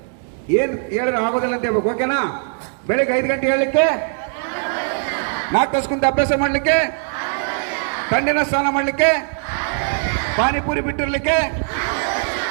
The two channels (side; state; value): left; silent; 59 dB below the other